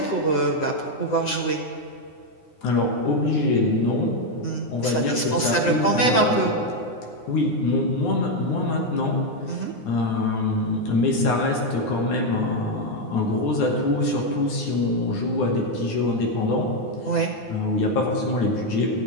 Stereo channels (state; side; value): late; right; 9.7 ms